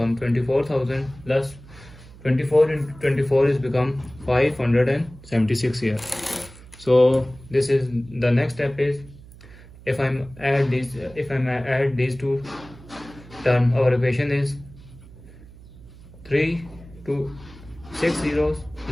24,000 plus 24 into 24 is become 576 here. So this is the next step is if I add these two terms, our equation is 3 to 6 zeros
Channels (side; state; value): right; noise; hum, 20 dB below the sound